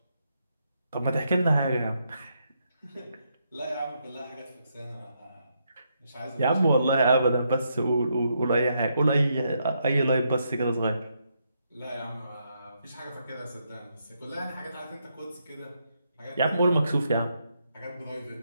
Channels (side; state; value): both; inverted; correlation -0.78